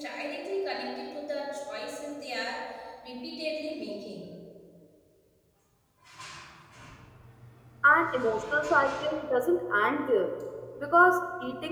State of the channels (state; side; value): identical; both; correlation 1.00